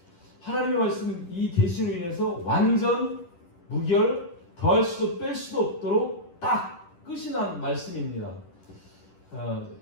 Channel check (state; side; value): late; right; 10 ms